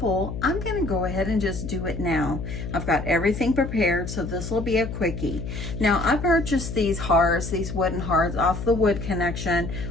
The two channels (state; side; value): noise; left; hum, 7 dB below the sound